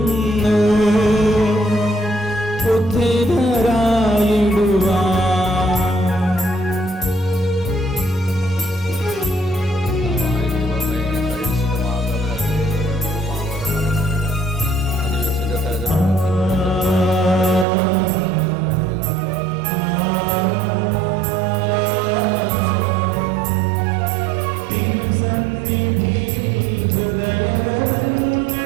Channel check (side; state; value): left; drops out; at 17.7 s